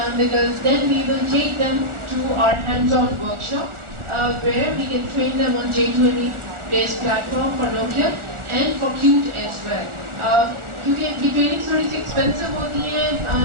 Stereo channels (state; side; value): late; left; 1.4 ms